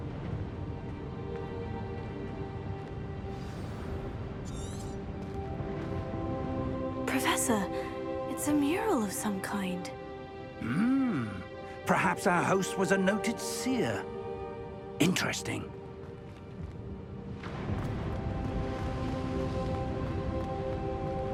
Professor, it's a mural of some kind. Perhaps our host was a noted seer. Interesting.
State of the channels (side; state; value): both; identical; correlation 1.00